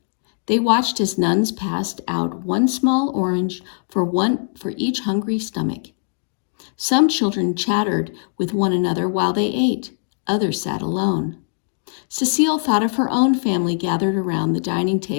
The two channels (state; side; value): silent; right; digital silence